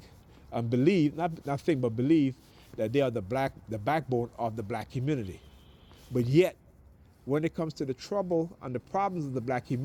and believe, not think, but believe that they are the backbone of the black community. But yet, when it comes to the trouble and the problems of the black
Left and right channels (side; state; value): both; identical; correlation 1.00